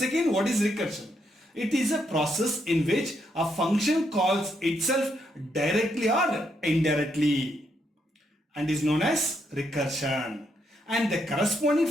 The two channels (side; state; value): both; normal; correlation 0.77